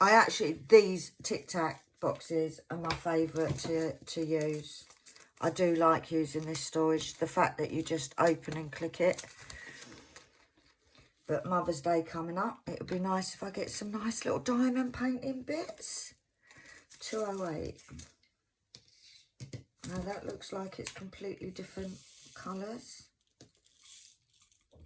these Tic Tac boxes are my favourite to use. I do like using this storage. The fact that you just open and click it. But Mother's Day coming up, it would be nice if I get some nice little diamond painting bits. 208. Now that looks like it's completely different colours.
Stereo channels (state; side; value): identical; both; correlation 1.00